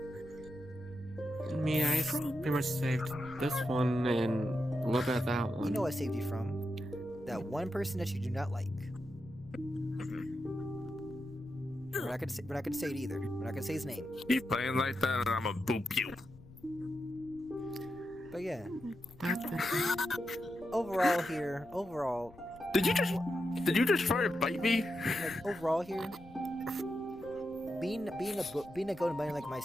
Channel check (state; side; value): noise; left; rumble, 21 dB below the sound